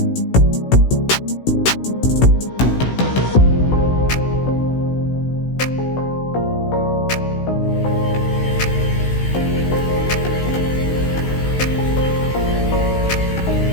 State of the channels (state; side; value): late; right; 16 ms